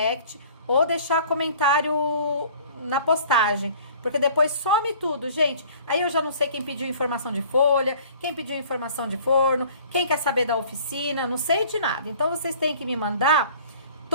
ou deixar comentário na postagem, porque depois some tudo, gente. Aí eu já não sei quem pediu informação de folha, quem pediu informação de forno, quem quer saber da oficina, não sei de nada. Então vocês têm que me mandar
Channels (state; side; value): inverted; both; correlation -0.50